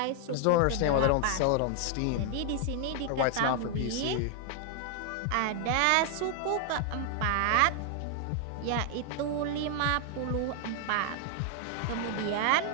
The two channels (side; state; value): both; different; correlation 0.00